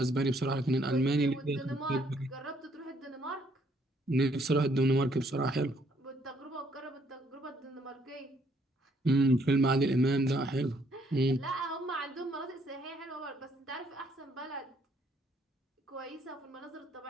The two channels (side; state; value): both; normal; correlation 0.68